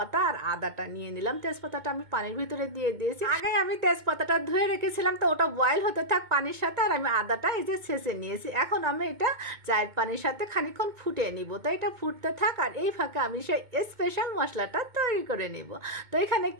আর আদাটা নিয়ে নিলাম। তেজপাতাটা আমি পানির ভিতরে দিয়ে দিয়েছি। আগে আমি তেজপাতাটা ধুয়ে রেখেছিলাম, তো ওটা বয়েল হতে থাক পানির সাথে। আর আমি আদাটা এই যে ছেঁচে নিয়েছি। এখন আমি এটা চায়ের পানির সাথে খানিকক্ষণ ফুটিয়ে নিব। তো এটা ফুটতে থাক, আর এই ফাঁকে আমি সেই স্পেশাল মশলাটা তৈরি করে নিব। তো এখানে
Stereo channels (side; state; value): left; late; 2.2 ms